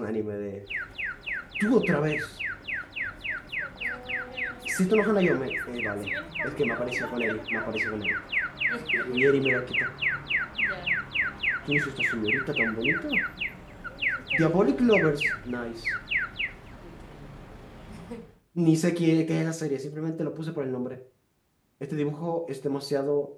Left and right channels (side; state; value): both; identical; correlation 1.00